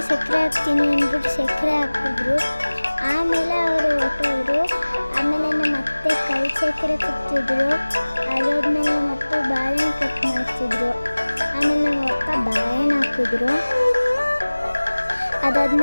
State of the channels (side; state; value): both; inverted; correlation -1.00